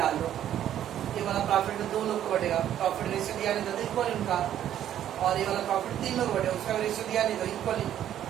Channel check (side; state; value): left; quieter; 11.0 dB